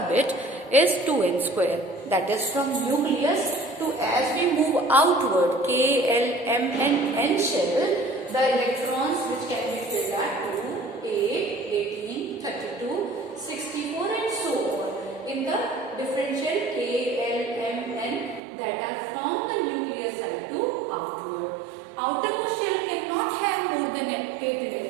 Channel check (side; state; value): left; drops out; at 18.4 s